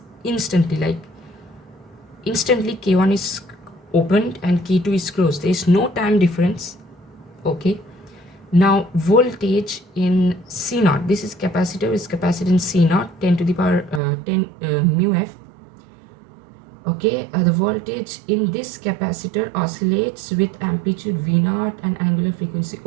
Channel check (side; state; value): left; drops out; at 14.0 s